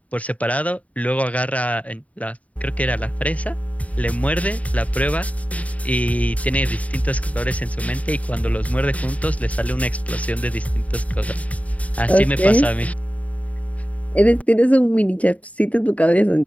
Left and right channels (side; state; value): right; late; 0.068 ms